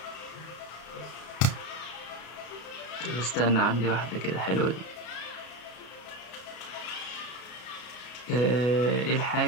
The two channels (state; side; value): late; right; 33 ms